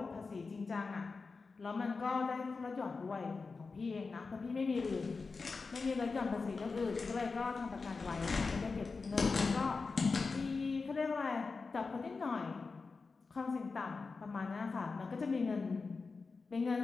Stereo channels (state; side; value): quieter; right; 4.4 dB